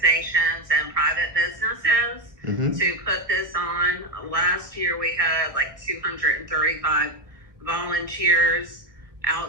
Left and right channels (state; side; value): late; left; 1.6 ms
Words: and private businesses to put this on. Last year we had like 235 volunteers